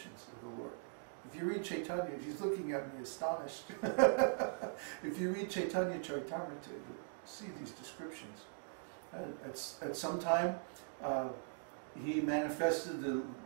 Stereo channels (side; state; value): left; silent; digital silence